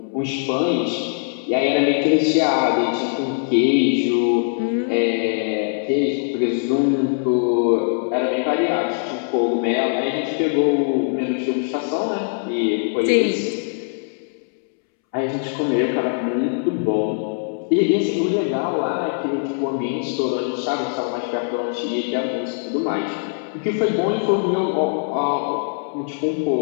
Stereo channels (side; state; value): right; silent; 65 dB below the other